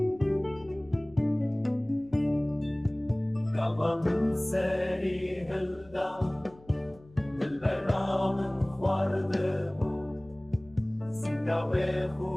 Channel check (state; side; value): noise; left; hum, 25 dB below the sound